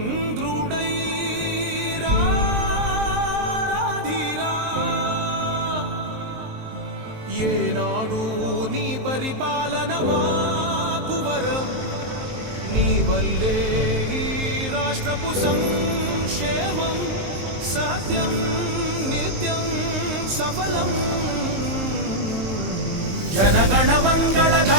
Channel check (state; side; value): late; left; 21 ms